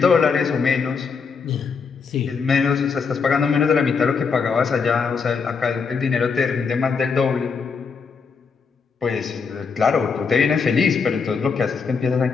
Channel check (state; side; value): quieter; right; 5.4 dB